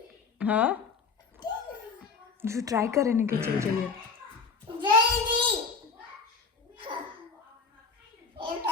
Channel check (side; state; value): right; quieter; 4.9 dB